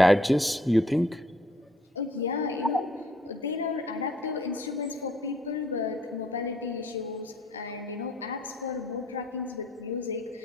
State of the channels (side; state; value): both; normal; correlation 0.62